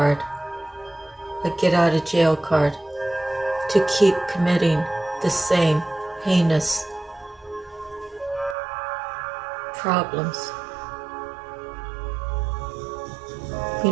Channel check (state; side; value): drops out; left; at 8.6 s